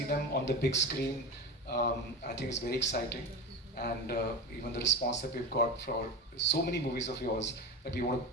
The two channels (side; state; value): both; normal; correlation 0.23